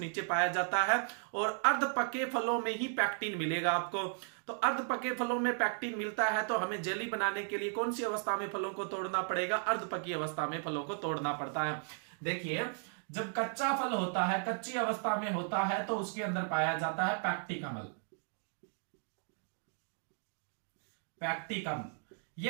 पाया जाता है और अर्ध पके फलों में ही पैक्टिन मिलेगा आपको। तो अर्ध पके फलों में पैक्टिन मिलता है, तो हमें जेली बनाने के लिए कौन सी अवस्था में फलों को तोड़ना पड़ेगा? अर्ध पकी अवस्था में फलों को तोड़ना पड़ता है। देखिए, जब कच्चा फल होता है, कच्ची अवस्था में होता है, तो उसके अंदर पाया जाता है पैक्टिक अम्ल। पैक्टिक अम्ल,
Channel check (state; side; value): silent; left; 54 dB below the other